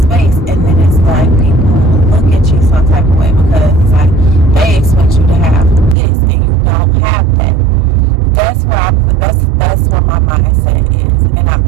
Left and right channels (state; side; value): drops out; left; at 6.0 s